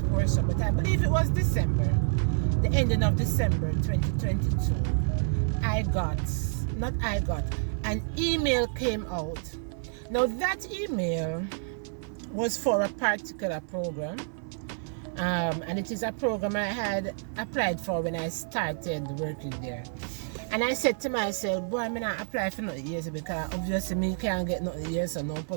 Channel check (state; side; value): silent; left; 56 dB below the other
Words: portion, but I believe it was December. The ending of December 2022. An email came out. Now that email was for a particular program, and it is a program I had applied for when I started working there. And I said to myself, boy, I'm not apply for nothing here because obviously me can't get nothing here, so no